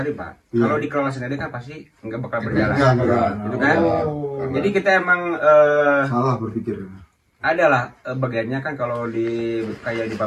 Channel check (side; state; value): both; identical; correlation 1.00